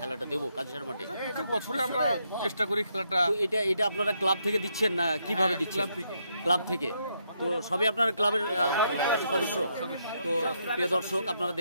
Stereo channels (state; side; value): inverted; both; correlation -0.77